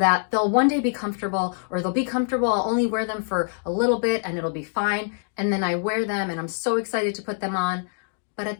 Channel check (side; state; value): right; silent; digital silence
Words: they'll one day be comfortable, or they'll be comfortable, I'll only wear them for a little bit and it'll be fine, and then I wear them and I'm so excited to put them on, but